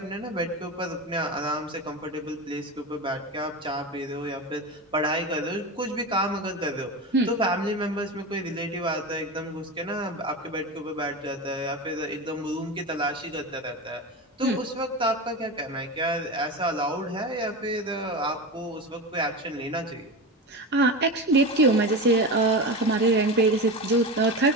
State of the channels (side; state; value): both; normal; correlation 0.23